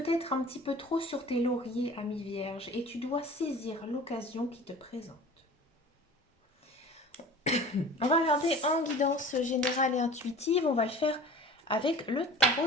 un petit peu trop sur tes lauriers, ami vierge, et tu dois saisir l'occasion qui te présente. On va regarder en guidance générale et intuitive. On va le faire avec le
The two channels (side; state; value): both; normal; correlation 0.42